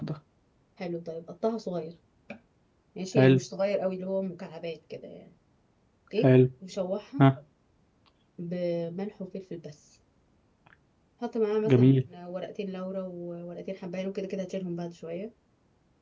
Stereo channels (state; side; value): identical; both; correlation 1.00